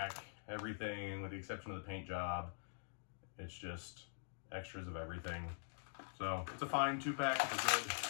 Everything, with the exception of the paint job, it's just extras of everything. So it's a fine 2-pack. It's a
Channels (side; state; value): right; silent; digital silence